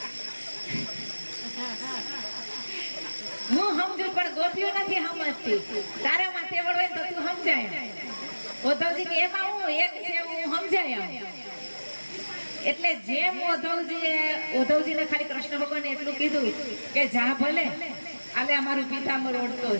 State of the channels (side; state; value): both; inverted; correlation -1.00